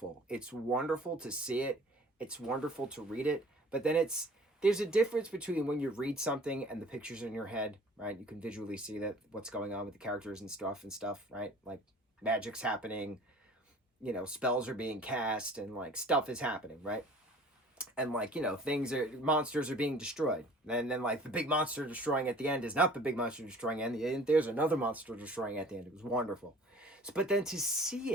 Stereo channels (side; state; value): both; normal; correlation 0.48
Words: It's wonderful to see it. It's wonderful to read it. But then there's a difference between when you read something and the pictures in your head, right? You can visually see that what's going on with the characters and stuff, right? Like magic's happening, spells are being cast, and like stuff is happening, right? And like monsters are being destroyed, and then like the big monster destroying at the end is not the big monster destroying at the end. There's another monster destroying at the end. It was wonderful. But then to see